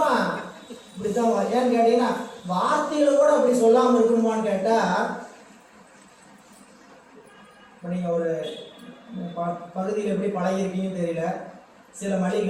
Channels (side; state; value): both; identical; correlation 1.00